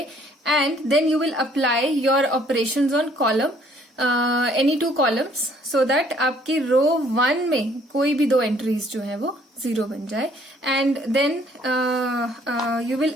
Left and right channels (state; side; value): normal; both; correlation 0.62